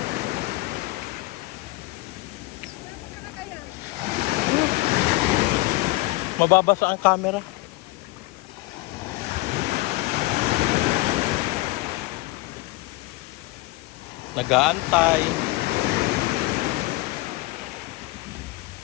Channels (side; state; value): right; quieter; 20.6 dB